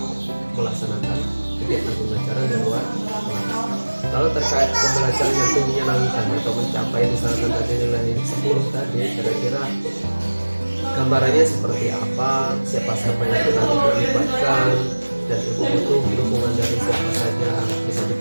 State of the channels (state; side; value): inverted; both; correlation -1.00